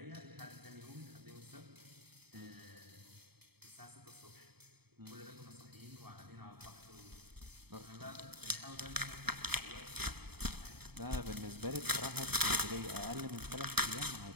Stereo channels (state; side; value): late; left; 0.97 ms